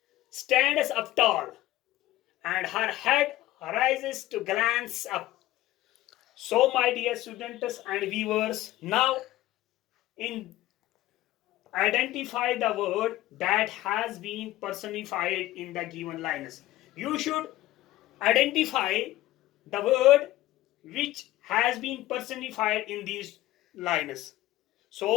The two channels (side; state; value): right; quieter; 15.8 dB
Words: stands up tall, and her head rises to glance up. So, my dear students and viewers, now in identify the word that has been personified in the given lines. You should identify the word which has been personified in these lines.